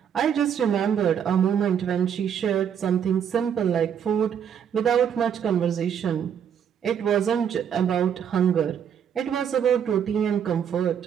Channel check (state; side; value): quieter; left; 8.3 dB